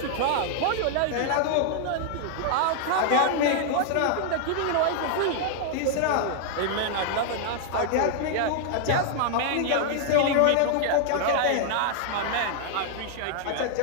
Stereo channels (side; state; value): both; different; correlation 0.00